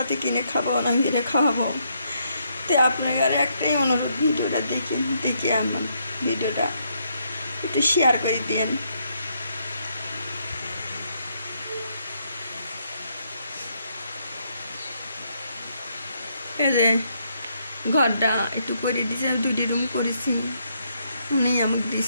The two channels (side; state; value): both; inverted; correlation -0.75